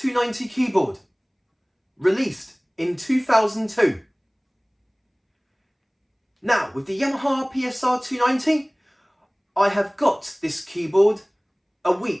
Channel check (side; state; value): both; identical; correlation 1.00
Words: keyboard, released in 2002. Now, with the Yamaha PSR-290, I have got this keyboard a